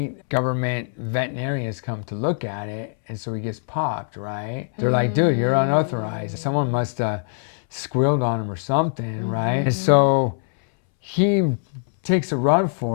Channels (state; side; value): silent; right; 64 dB below the other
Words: government veterinarians come to look at it, and so he gets popped, right? They're like, dude, you're unauthorized. Someone must have squealed on him or something, right? And so he takes a run